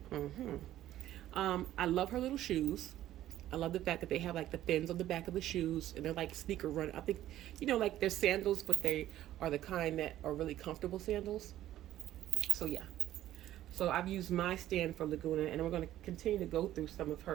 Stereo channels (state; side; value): quieter; left; 13.3 dB